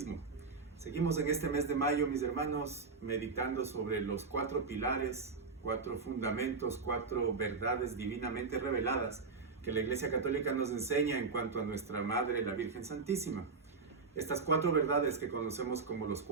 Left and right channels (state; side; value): quieter; left; 4.6 dB